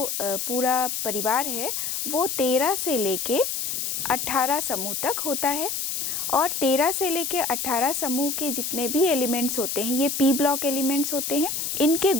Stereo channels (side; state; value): left; noise; hiss, 2 dB below the sound